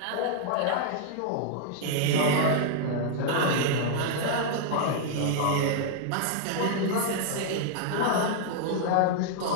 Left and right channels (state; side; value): different; both; correlation -0.01